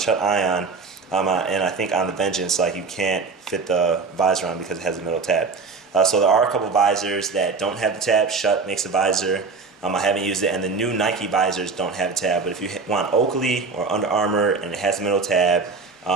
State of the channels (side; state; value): left; quieter; 4.6 dB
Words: Ion and I think on the Vengeance, like, you can't fit the visor on because it has a middle tab. So there are a couple visors that don't have the tab. Schutt makes a visor. I haven't used it, and the new Nike visors don't have a tab. But if you want Oakley or Under Armour and it has a middle tab,